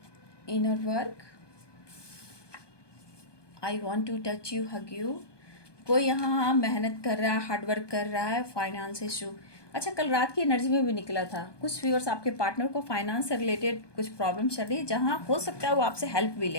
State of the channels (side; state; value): right; late; 1.2 ms